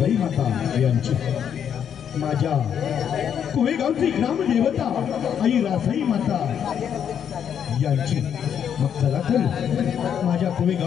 माता यांची, माझ्या कोळेगावची ग्रामदेवता आई रासाई माता यांची. मग चला तर माझ्या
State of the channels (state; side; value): quieter; right; 8.5 dB